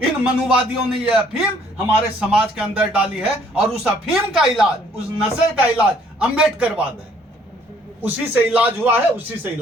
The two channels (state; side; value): normal; both; correlation 0.62